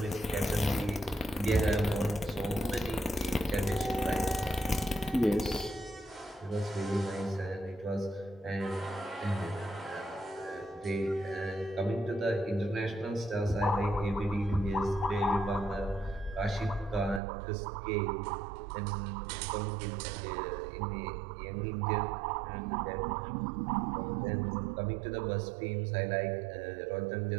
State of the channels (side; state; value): left; drops out; at 17.2 s